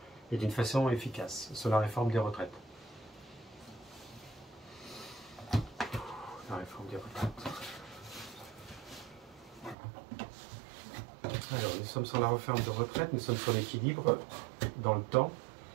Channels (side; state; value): left; drops out; at 9.8 s